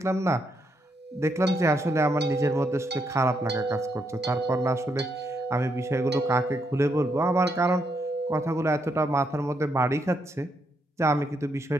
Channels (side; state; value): both; normal; correlation 0.78